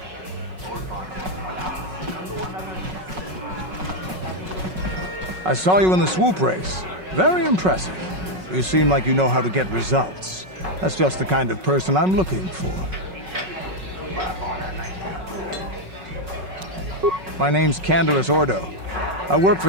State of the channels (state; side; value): late; left; 5.4 ms